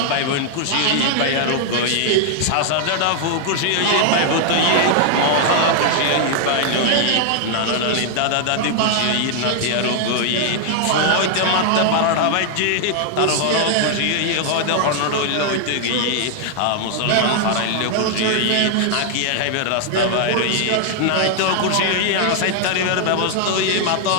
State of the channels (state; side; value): different; both; correlation 0.00